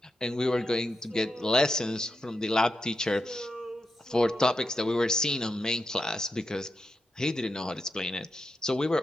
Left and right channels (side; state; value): both; normal; correlation 0.87